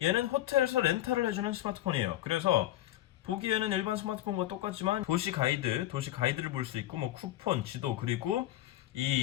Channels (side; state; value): right; quieter; 14.1 dB